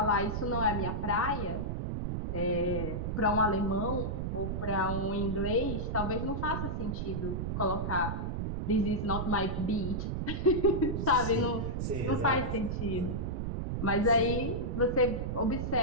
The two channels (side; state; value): right; noise; rumble, 2 dB below the sound